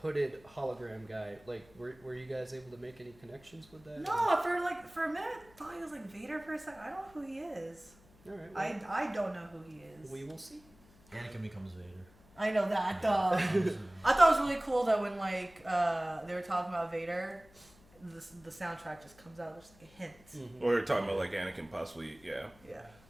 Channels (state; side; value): noise; left; hum, 26 dB below the sound